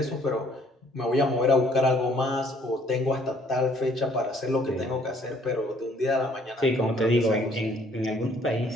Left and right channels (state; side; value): normal; both; correlation 0.61